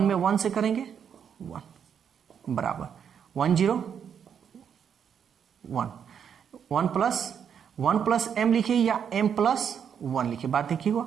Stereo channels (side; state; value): left; quieter; 7.8 dB